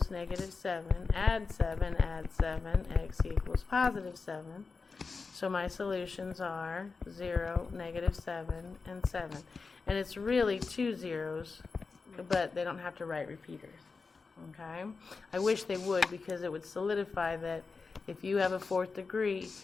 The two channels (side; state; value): right; quieter; 4.5 dB